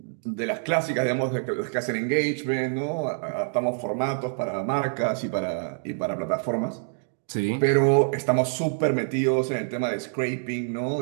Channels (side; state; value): left; silent; digital silence